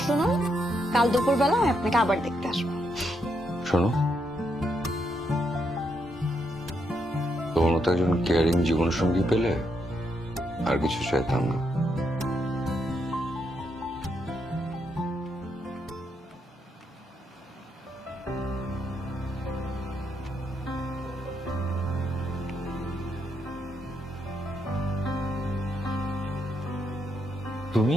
শুনুন, কাল দুপুরবেলা আমি আপনাকে আবার দেখতে আসবো। শোনো, তোমার মতো একজন কেয়ারিং জীবন সঙ্গী পেলে আর কিছু চাইতাম না। তুমি?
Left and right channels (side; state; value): both; normal; correlation 0.79